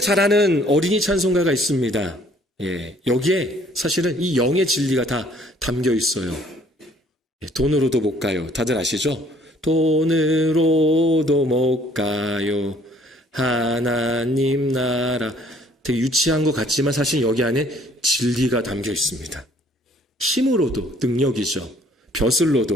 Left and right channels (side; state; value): both; normal; correlation 0.59